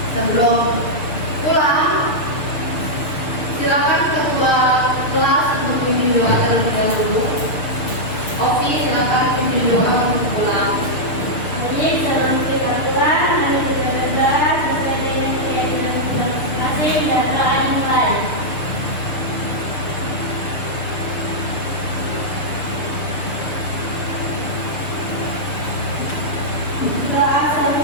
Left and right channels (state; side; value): late; right; 6.8 ms